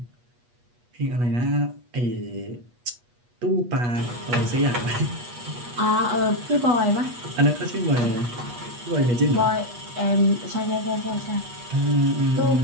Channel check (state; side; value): late; left; 8.3 ms